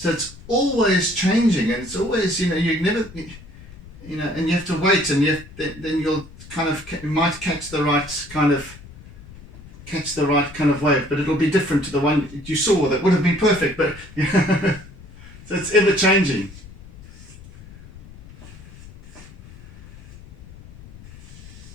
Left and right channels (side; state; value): left; noise; rumble, 19 dB below the sound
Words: it's always changing, and it's always, you know, you never, you know, and you have to wait, and then you'll kind of, you might catch the right kind of wave, but it'll be different to the one you saw that would have been perfect. But so it's ever changing.